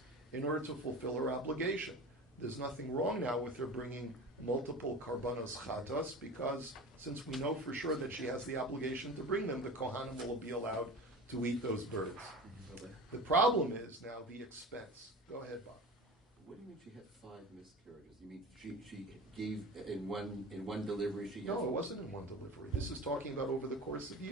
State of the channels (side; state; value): both; normal; correlation 0.33